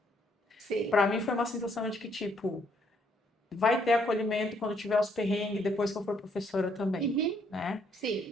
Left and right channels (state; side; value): normal; both; correlation 0.69